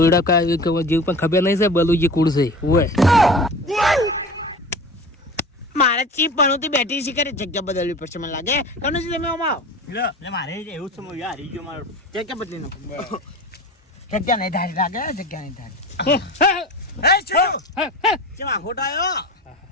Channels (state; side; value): normal; both; correlation 0.35